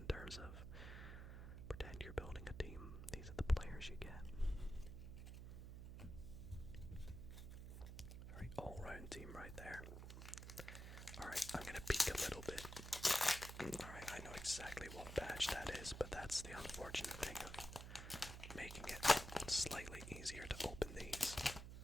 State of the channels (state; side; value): noise; right; hum, 9 dB below the sound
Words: terms of pretend you're building a team. These are the players you get. Very all-round team right there. Alright, I'm gonna peek a little bit. Alright, I know exactly what badge that is, but that's the unfortunate thing of making it slightly easier to open these.